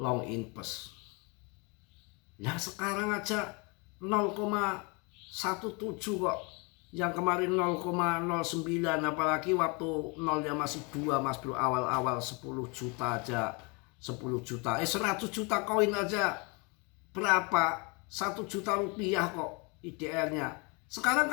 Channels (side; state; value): right; quieter; 30.7 dB